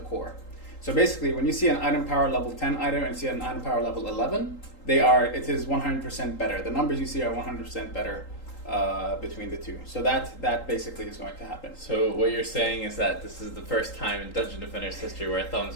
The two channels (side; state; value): right; late; 3.8 ms